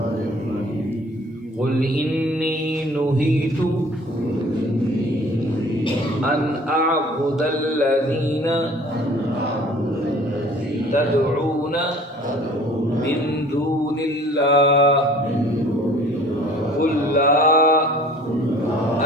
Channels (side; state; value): both; normal; correlation 0.50